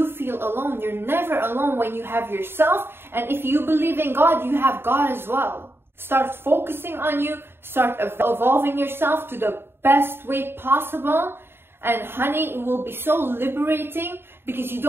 feel alone, you're never alone when you have yourself. And if you believe in God, you have God as well. Start focusing on you. Start evolving yourself to the best way possible. And honey, it will be so liberating because you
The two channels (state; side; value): late; left; 0.11 ms